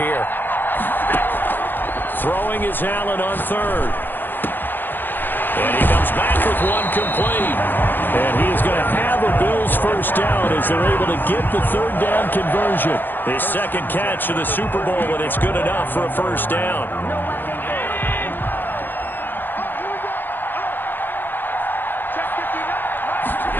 Throwing is Allen on 3rd. And he comes back with one complete. And he is going to have a Bills first down as they're able to get the 3rd down conversion. His 2nd catch of the Super Bowl, and it's good enough for a first down.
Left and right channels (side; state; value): right; late; 0.092 ms